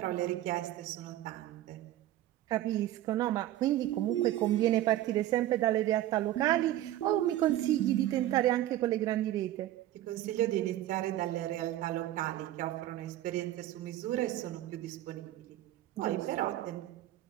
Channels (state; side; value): quieter; left; 13.9 dB